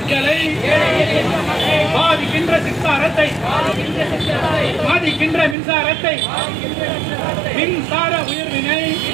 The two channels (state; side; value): drops out; left; at 5.6 s